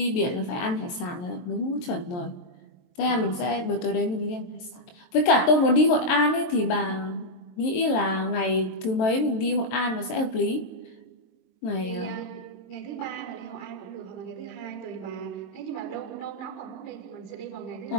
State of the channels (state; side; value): late; right; 23 ms